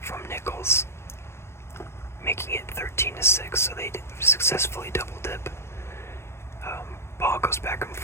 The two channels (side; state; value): right; late; 0.12 ms